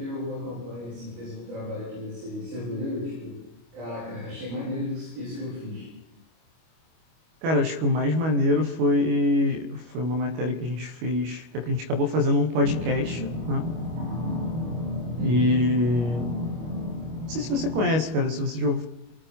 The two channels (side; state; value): left; late; 25 ms